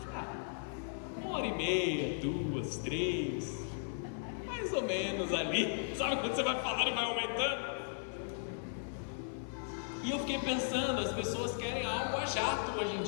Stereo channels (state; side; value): silent; right; digital silence